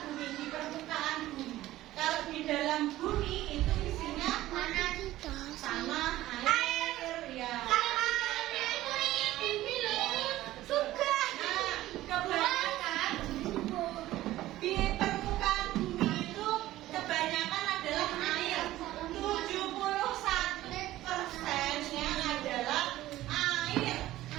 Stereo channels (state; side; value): quieter; left; 15.4 dB